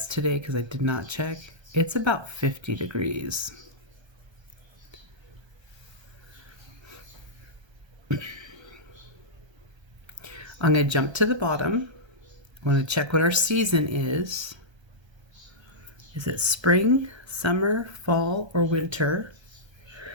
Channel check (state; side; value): late; left; 1.3 ms